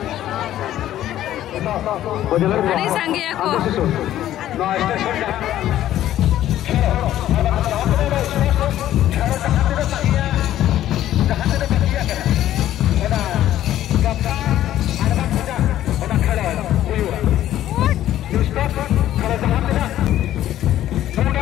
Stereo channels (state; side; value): quieter; right; 12.7 dB